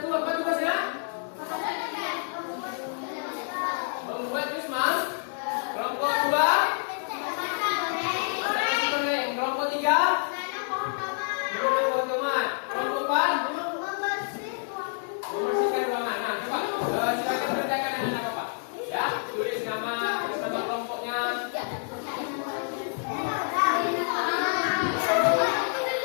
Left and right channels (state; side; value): silent; right; 59 dB below the other